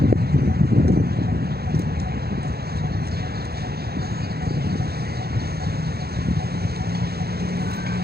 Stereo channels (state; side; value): late; left; 0.46 ms